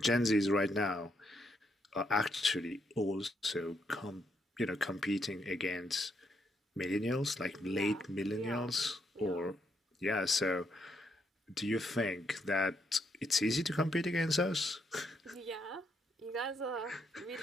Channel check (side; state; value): both; normal; correlation 0.76